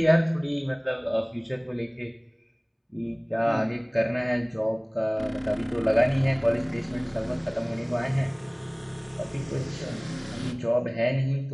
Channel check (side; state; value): both; identical; correlation 1.00